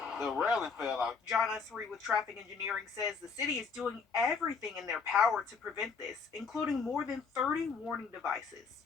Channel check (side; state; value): right; quieter; 5.4 dB